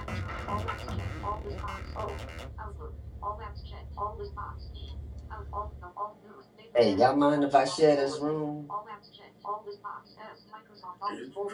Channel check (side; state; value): both; identical; correlation 1.00